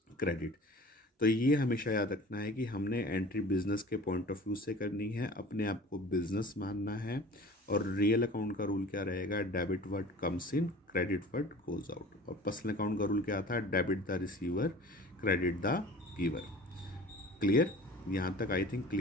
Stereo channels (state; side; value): normal; both; correlation 0.42